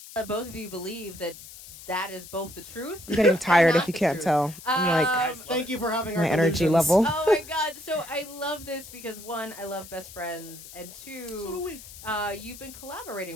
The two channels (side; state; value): left; noise; hiss, 16 dB below the sound